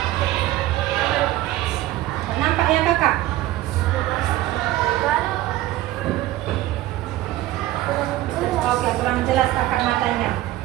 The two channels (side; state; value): left; quieter; 15.7 dB